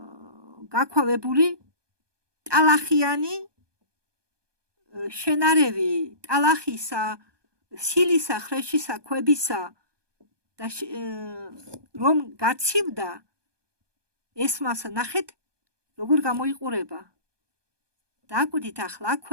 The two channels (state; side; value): late; left; 1.2 ms